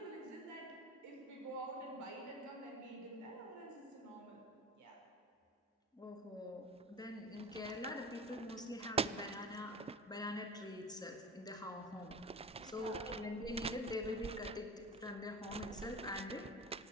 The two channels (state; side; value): normal; both; correlation 0.34